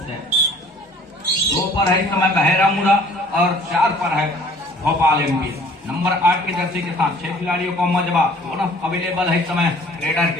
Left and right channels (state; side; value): normal; both; correlation 0.53